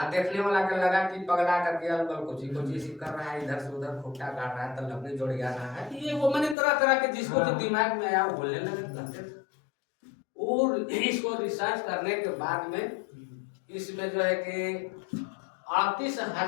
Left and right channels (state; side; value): drops out; right; at 6.6 s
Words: देखने वाला का लगा कि पगला करके अलबल कुछ कर रहा है, इधर से उधर खुट्टा काट रहा है, तो लकड़ी जोड़ जा रहा है। ये वो मैंने तरह तरह के जिसको जो दिमाग में आया वो बोलने लगे। और इसको रिसर्च करने के बाद में इसमें जो है कि